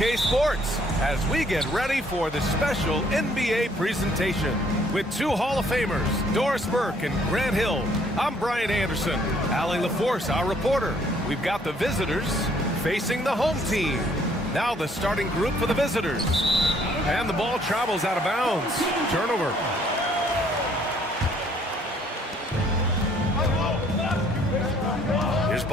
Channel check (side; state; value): both; normal; correlation 0.63